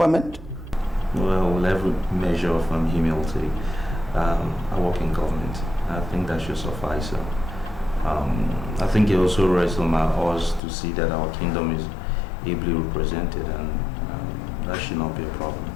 Well, with every measure of humility, I work in government. I think that should suffice. I think it also rests on us to see that our kingdom is ably represented, and that should not be a problem.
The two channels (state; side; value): drops out; right; at 10.6 s